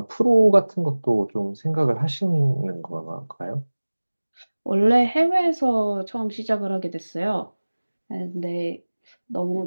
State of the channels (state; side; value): inverted; both; correlation -1.00